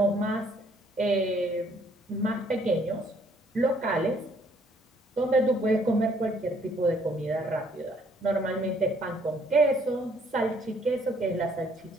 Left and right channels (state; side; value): normal; both; correlation 0.64